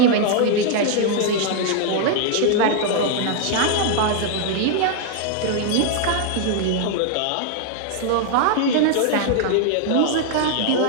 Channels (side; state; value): both; different; correlation 0.00